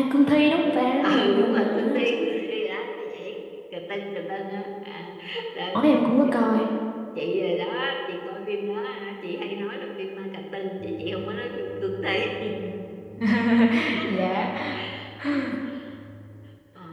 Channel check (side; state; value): both; identical; correlation 1.00